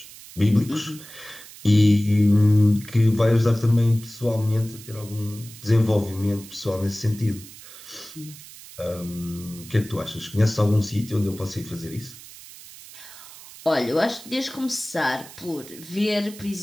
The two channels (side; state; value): right; noise; hiss, 17 dB below the sound